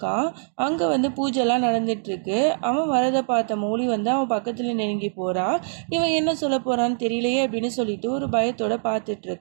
அங்கே வந்து பூஜைலாம் நடந்துகிட்ருக்கு. அவன் வரதை பார்த்த மௌலி வந்து அவன் பக்கத்தில் நெருங்கி போகிறான். இவன் என்ன சொல்ல போகிறான்னு தெரியலையே அப்படின்னு சொல்லிட்டு ஒரு பயத்தோடு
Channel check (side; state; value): left; silent; digital silence